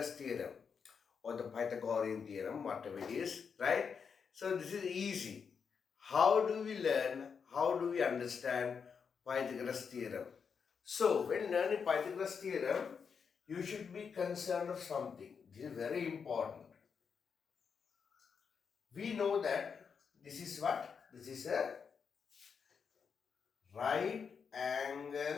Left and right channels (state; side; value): quieter; right; 6.2 dB